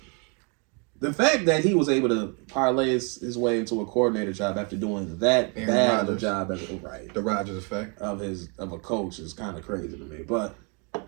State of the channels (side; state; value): left; quieter; 35.0 dB